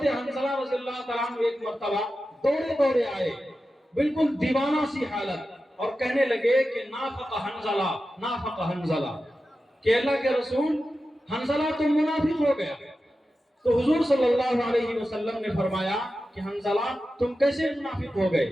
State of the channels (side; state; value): both; normal; correlation 0.92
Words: حنظلہ رضی اللہ تعالیٰ عنہ ایک مرتبہ دوڑے آئے، بالکل دیوانہ سی حالت، اور کہنے لگے کہ نافق حنظلہ، نافق حنظلہ، کہ اللہ کے رسول حنظلہ تو منافق ہو گیا۔ تو حضور صلی اللہ علیہ وسلم نے فرمایا کہ حنظلہ تم کیسے منافق ہو